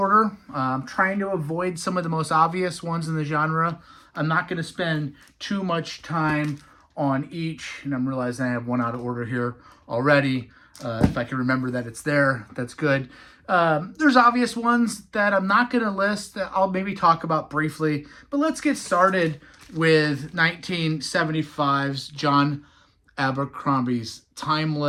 I'm trying to avoid some of the most obvious ones in the genre. I'm not going to spend too much time on each, and I'm realizing I have one out of order here already. If I can remember that it's there, that's good. There's obvious ones that I'm not going to list that I'll maybe talk about briefly, but let's get started with 1975's John Abercrombie's Time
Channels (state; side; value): identical; both; correlation 1.00